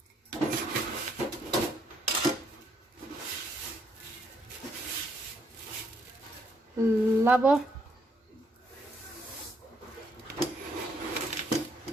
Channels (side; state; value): both; normal; correlation 0.71